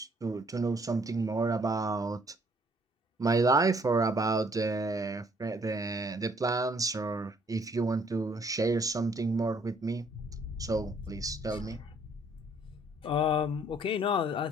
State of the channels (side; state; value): both; normal; correlation 0.63